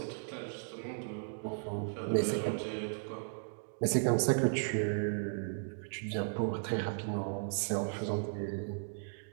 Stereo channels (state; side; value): silent; left; digital silence